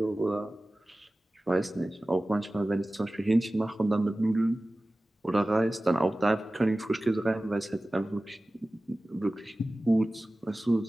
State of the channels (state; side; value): normal; both; correlation 0.97